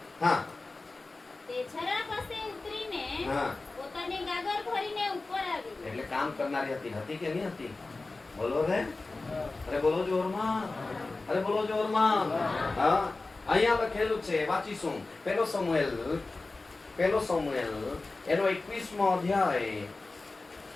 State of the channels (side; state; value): right; quieter; 3.4 dB